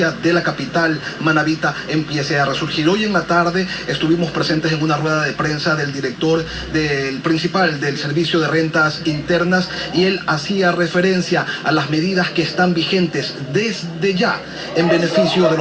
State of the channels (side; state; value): both; identical; correlation 1.00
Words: de la capital manabita, empiece a resurgir. Hoy en la tarde estuvimos presentes en una rueda de prensa del director del principal del Servicio de Rentas Internas, y él hacía referencia a las medidas que están vigentes desde ya en beneficio de